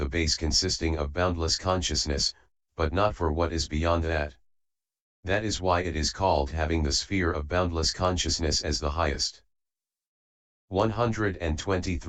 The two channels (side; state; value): both; identical; correlation 1.00